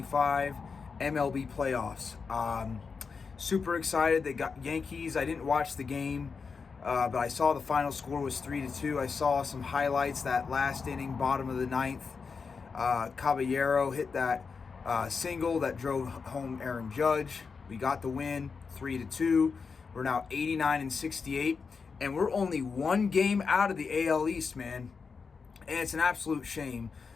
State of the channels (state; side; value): quieter; right; 5.2 dB